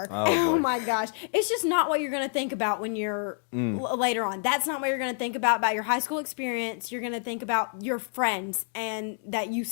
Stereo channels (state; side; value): silent; right; 59 dB below the other